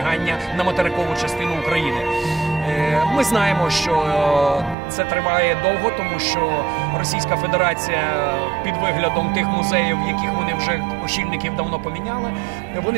на материкову частину України. Ми знаємо, що це триває довго, тому що Російська Федерація під виглядом тих музеїв, яких вони вже очільників давно поміняли, вони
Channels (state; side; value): drops out; left; at 4.8 s